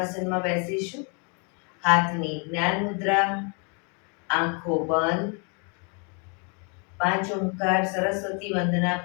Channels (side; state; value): right; quieter; 36.0 dB